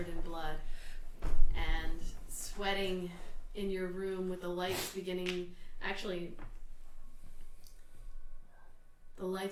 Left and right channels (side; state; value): both; identical; correlation 1.00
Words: in blood and sweating in your room with the lights beginning. Actually, the